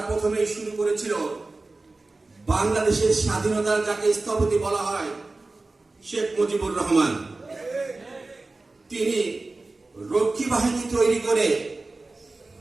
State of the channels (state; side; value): quieter; left; 3.3 dB